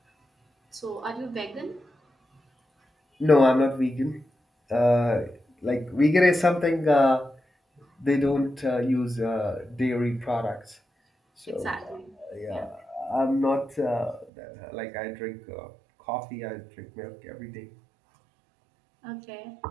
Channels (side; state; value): left; drops out; at 14.3 s